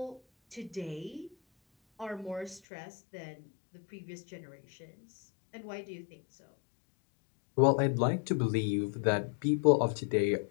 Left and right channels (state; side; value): drops out; right; at 2.6 s